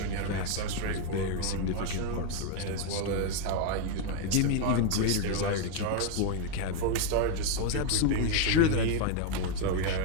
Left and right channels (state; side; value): different; both; correlation 0.01